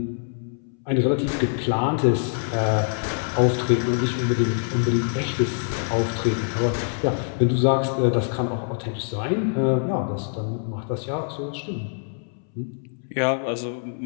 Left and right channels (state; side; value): silent; right; 62 dB below the other